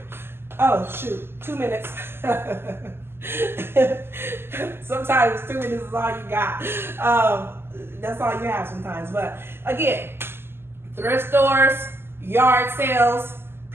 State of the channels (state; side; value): late; left; 0.11 ms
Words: Oh, shoot, 2 minutes. Sometimes 2 minutes is all you got. That's all you have sometimes. But again, thrift stores, yard sales,